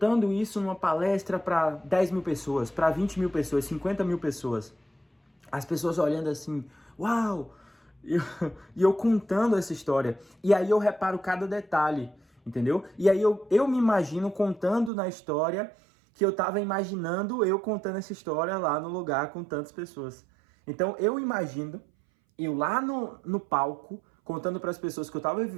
isso numa palestra para 10 mil pessoas, para 20 mil pessoas, 50 mil pessoas. As pessoas olhando assim, uau! E eu contando essa história. E aí eu reparo cada detalhe, entendeu? E aí eu me imagino contando na história que eu tava imaginando eu contando essa história lá no lugar com tantas pessoas. Então eu imagino eu lá no palco contando para as pessoas que eu tava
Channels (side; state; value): left; drops out; at 14.9 s